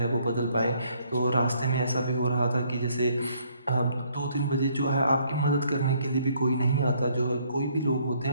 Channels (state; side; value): inverted; both; correlation -0.66